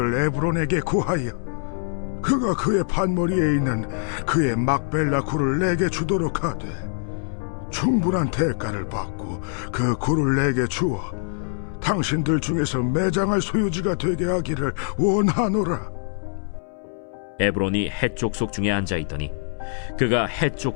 에브론에게 구하여 그가 그의 판머리에 있는 그의 막벨라 굴을 내게 주도록 하되 충분한 대가를 받고 그 굴을 내게 주어 당신들 중에서 매장할 소유지가 되게 하기를 원하노라. 에브론이 헷 족속 중에 앉아있더니 그가 헷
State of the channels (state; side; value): silent; right; 63 dB below the other